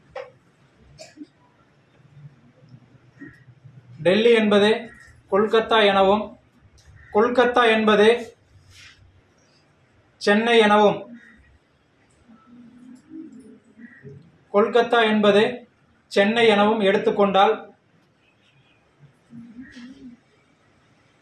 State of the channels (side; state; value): both; identical; correlation 1.00